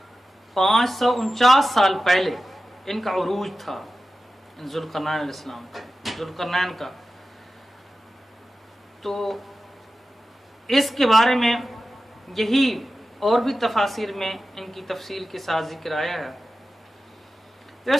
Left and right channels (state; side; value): normal; both; correlation 0.94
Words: 549 سال پہلے ان کا عروج تھا، ذوالقرنین علیہ السلام کا، ذوالقرنین کا۔ تو اس کے بارے میں یہی اور بھی تفاسیر میں ان کی تفصیل کے ساتھ ذکر آیا ہے۔ تو